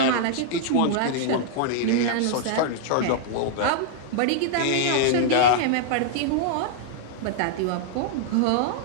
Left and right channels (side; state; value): both; different; correlation -0.01